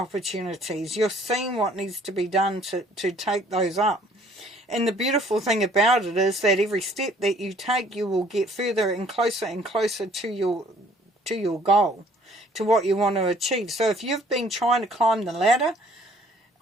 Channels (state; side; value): normal; both; correlation 0.58